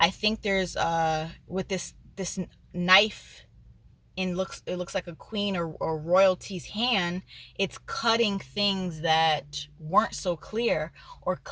think there's with this knife, it looks like a queen or royalty's hand. It's cutting things that weren't so clear, or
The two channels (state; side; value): identical; both; correlation 1.00